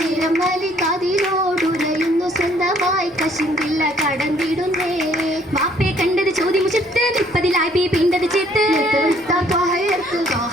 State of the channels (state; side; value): normal; both; correlation 0.62